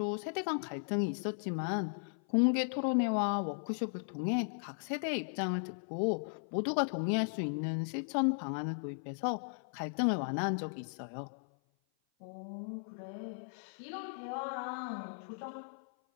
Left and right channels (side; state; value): right; silent; 54 dB below the other